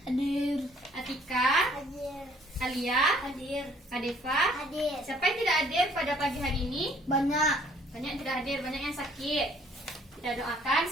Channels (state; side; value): normal; both; correlation 0.60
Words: Hadir. Atika, Hadir. Alia, Hadir. Adefa. Hadir. Siapa yang tidak hadir pada pagi hari ini? Banyak. Banyak yang tidak hadir, banyak yang sakit. Kita doakan